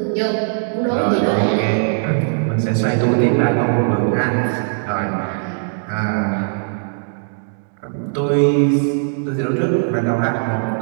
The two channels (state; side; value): silent; left; digital silence